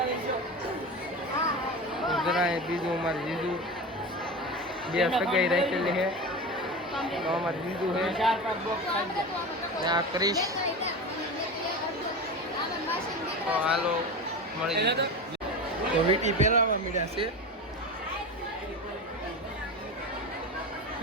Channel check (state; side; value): normal; both; correlation 0.26